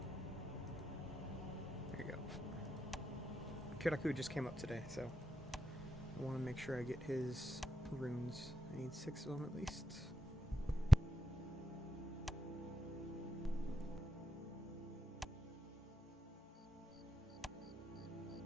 There you go. Kyoku just came up today, so I want to make sure I get his runes. I need 6 of them at least.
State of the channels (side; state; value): both; normal; correlation 0.86